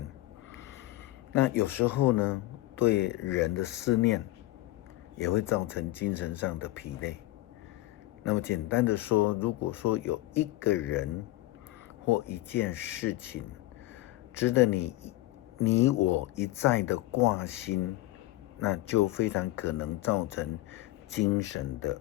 那有时候呢，对人的思念也会造成精神上的疲累。那么简单的说，如果说有一个人或一件事情值得你我一再的挂心，那就非常可能造成精神的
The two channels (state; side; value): quieter; right; 17.3 dB